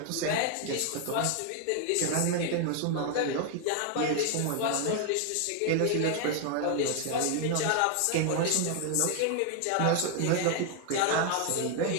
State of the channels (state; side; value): different; both; correlation 0.00